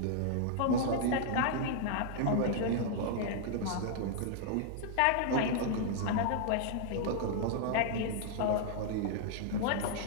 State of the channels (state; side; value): different; both; correlation -0.01